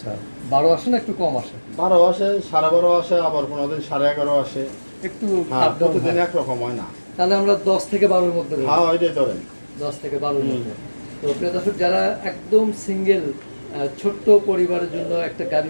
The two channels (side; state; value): both; inverted; correlation -1.00